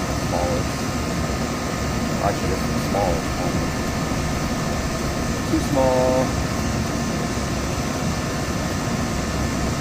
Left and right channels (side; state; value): both; identical; correlation 1.00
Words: Smallest. Actually, this is the smallest one. Too small.